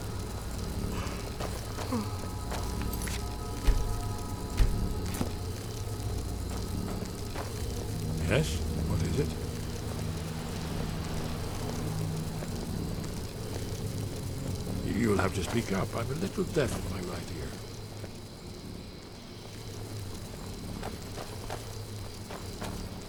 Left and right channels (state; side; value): identical; both; correlation 1.00